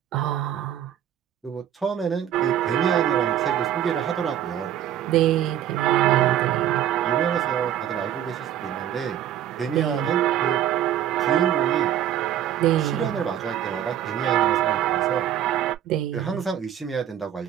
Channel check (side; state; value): left; quieter; 10.8 dB